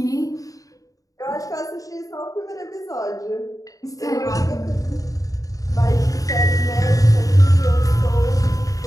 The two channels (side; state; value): right; late; 0.17 ms